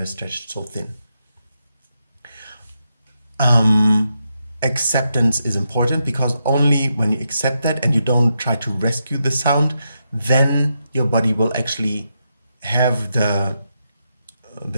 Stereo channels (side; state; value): both; inverted; correlation -0.84